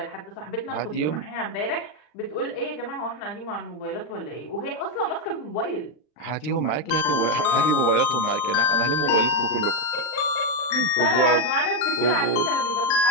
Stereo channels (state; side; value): late; right; 40 ms